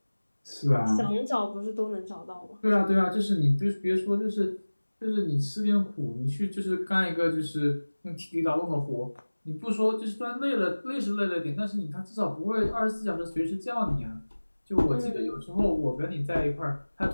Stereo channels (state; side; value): inverted; both; correlation -1.00